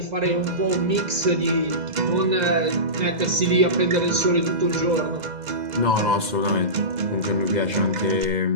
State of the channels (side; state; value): left; late; 2.0 ms